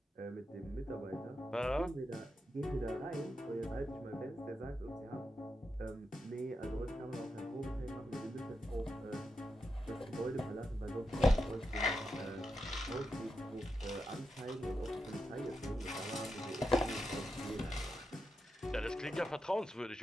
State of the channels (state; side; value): normal; both; correlation 0.87